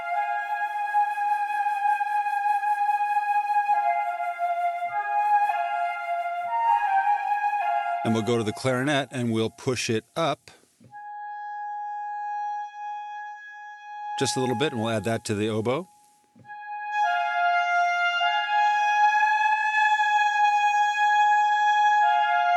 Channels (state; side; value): identical; both; correlation 1.00